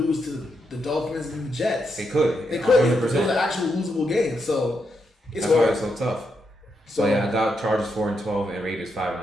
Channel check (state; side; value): normal; both; correlation 0.82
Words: to the Dolphins and the Jets. They could. 100%. Those are actual losable games, so it's hard. That's why it's so tough. So yeah, I got Chargers 4-12 and Raiders